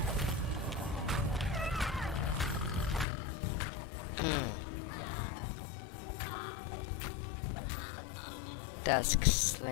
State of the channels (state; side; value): drops out; right; at 3.1 s